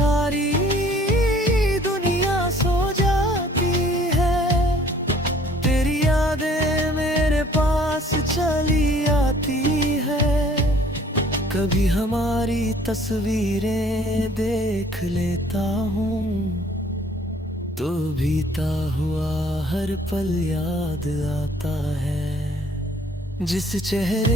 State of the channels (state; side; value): normal; both; correlation 0.56